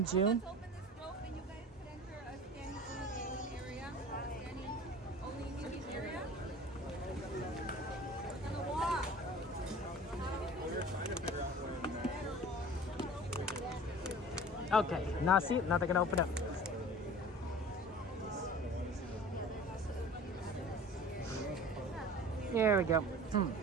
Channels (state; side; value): normal; both; correlation 0.41